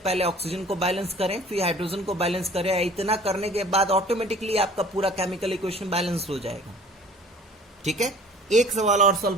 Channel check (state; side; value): normal; both; correlation 0.49